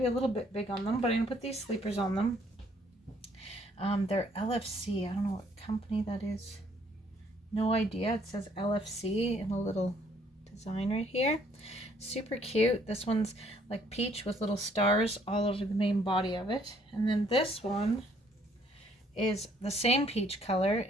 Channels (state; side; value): normal; both; correlation 0.64